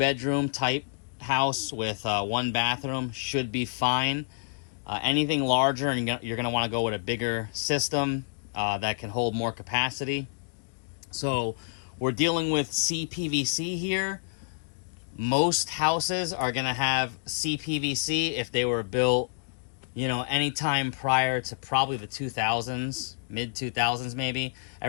type house with 1 bathroom. Should be fine. Anything larger, and you're going to want to go with a bigger system that can hold more capacity. So we're dealing with CPVC here. Most houses are going to have CPVC if they were built, anytime prior to probably the 2000s, mid 2000s maybe.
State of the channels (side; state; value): right; silent; digital silence